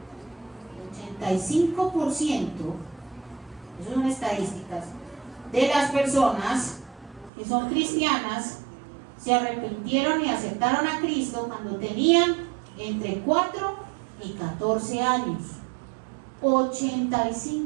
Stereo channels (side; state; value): left; drops out; at 7.3 s